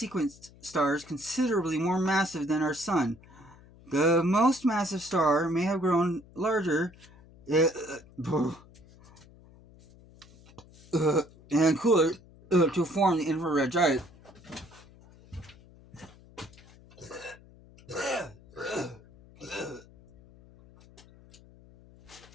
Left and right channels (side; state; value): left; noise; hum, 24 dB below the sound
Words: stars considerably more massive than our sun. The most massive star may have grown larger and cooler to form the infrared giant.